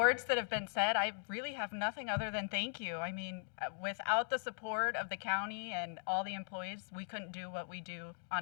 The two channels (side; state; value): right; silent; digital silence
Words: that have been said, I really have nothing other than thank you. I mean, without the support of the county and all the employees, we couldn't do what we do